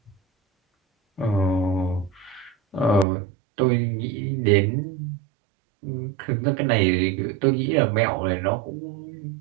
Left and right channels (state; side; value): drops out; left; at 3.1 s